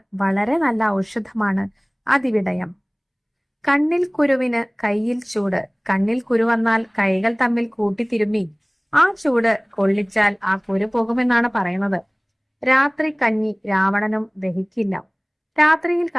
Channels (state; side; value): identical; both; correlation 1.00